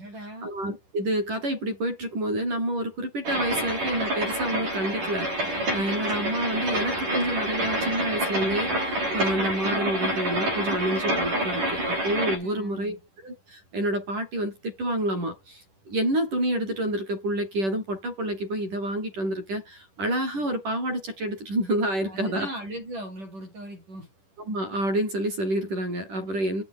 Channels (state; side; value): late; left; 10 ms